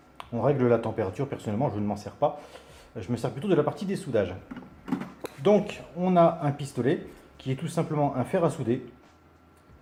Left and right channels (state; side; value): identical; both; correlation 1.00